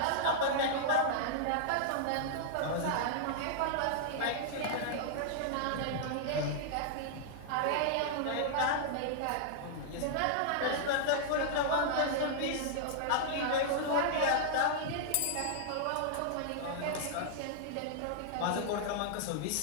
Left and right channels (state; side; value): different; both; correlation -0.01